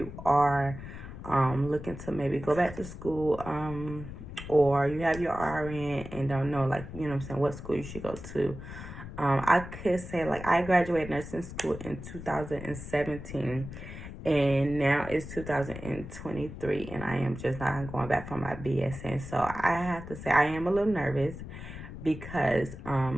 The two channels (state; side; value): noise; left; rumble, 11 dB below the sound